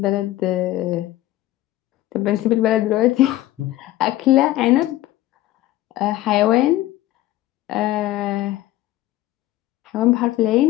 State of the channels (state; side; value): quieter; right; 15.5 dB